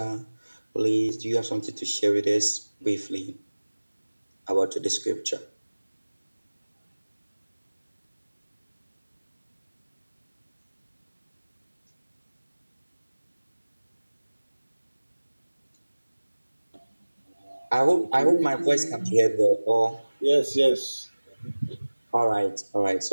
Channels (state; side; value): inverted; both; correlation -1.00